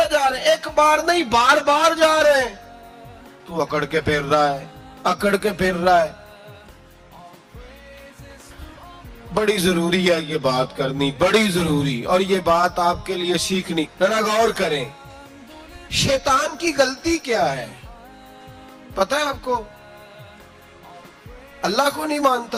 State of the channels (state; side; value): identical; both; correlation 1.00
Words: जा रहे हैं, एक बार नहीं बार बार जा रहे हैं। तू अकड़ के फिर रहा है, अकड़ के फिर रहा है। बड़ी जरूरी है ये बात करनी, बड़ी जरूरी, और ये बात आपके लिए सीखनी। जरा गौर करें, शैतान की गलती क्या है पता है आपको? अल्लाह को नहीं